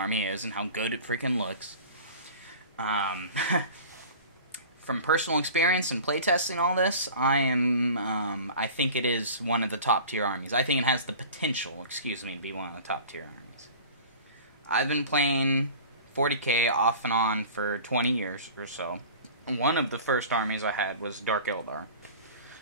is and how good it freaking looks. From personal experience and playtesting all this, I think it is one of the top tier armies. I think it has the potential, to be one of the top tier armies. I've been playing 40k off and on for 20 years or so. One of the first armies I had was Dark Eldar.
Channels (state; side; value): inverted; both; correlation -0.40